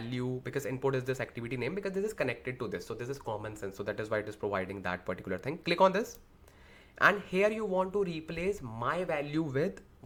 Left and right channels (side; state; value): both; identical; correlation 1.00